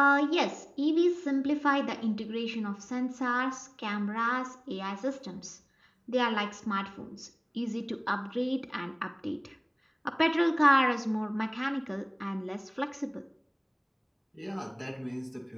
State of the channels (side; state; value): both; identical; correlation 1.00